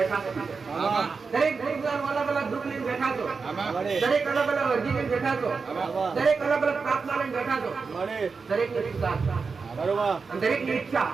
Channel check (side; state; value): left; quieter; 4.9 dB